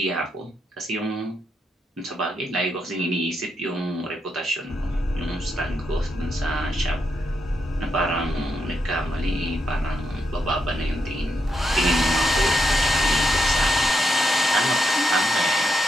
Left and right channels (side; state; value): both; normal; correlation 0.82